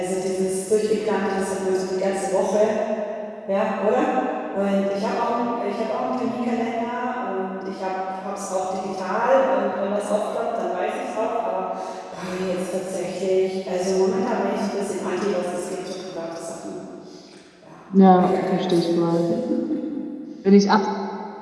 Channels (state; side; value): identical; both; correlation 1.00